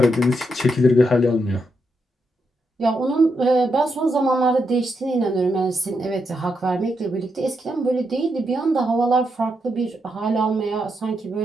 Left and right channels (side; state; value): both; normal; correlation 0.82